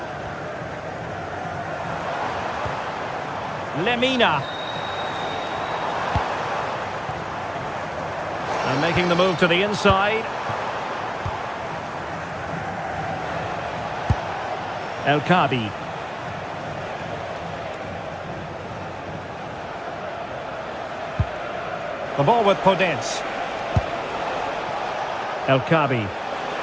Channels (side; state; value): both; identical; correlation 1.00